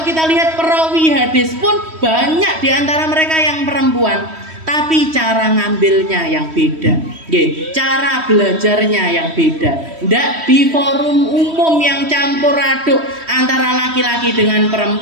kita lihat perawi hadis pun banyak di antara mereka yang perempuan, tapi cara ngambilnya yang beda, cara belajarnya yang beda. Nggak di forum umum yang campur aduk antara laki-laki dengan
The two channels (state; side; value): late; left; 3.1 ms